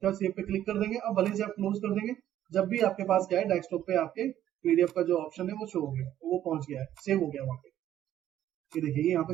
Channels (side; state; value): left; quieter; 11.8 dB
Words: सेव पे क्लिक कर देंगे। अब भले से आप क्लोज कर देंगे, जब भी आपके पास क्या है डेस्कटॉप पे आपके पीडीएफ का जो ऑप्शन है वो शो हो गया, वो पहुंच गया है, सेव हो गया वहां पे। ये देखिए यहाँ पे